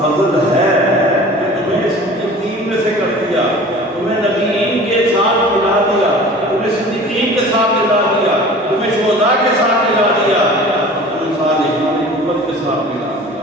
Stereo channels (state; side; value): normal; both; correlation 0.42